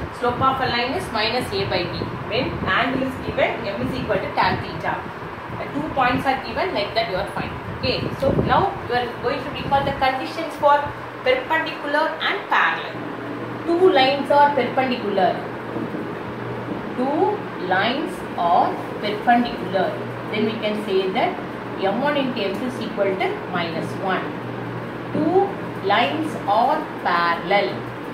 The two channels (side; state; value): both; identical; correlation 1.00